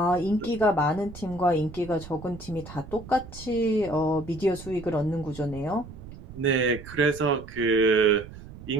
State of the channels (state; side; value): noise; right; rumble, 15 dB below the sound